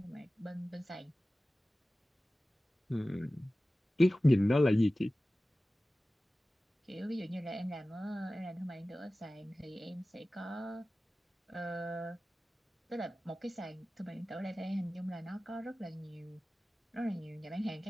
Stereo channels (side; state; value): both; normal; correlation 0.96